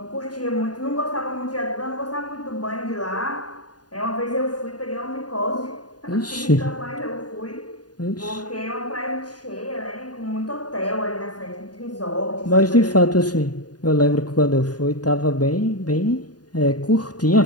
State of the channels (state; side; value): late; right; 0.69 ms